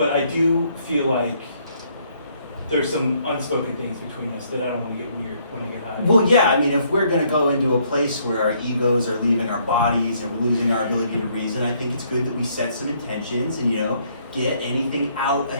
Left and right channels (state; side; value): inverted; both; correlation -0.68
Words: I do feel like there's some unspoken things between us that I don't want to get weird when I get high. Well, yeah, I mean, if we're gonna go into a place where our egos are leaving our bodies and we're losing our ability to reason, I think it's good that we set some intentions and, get anything out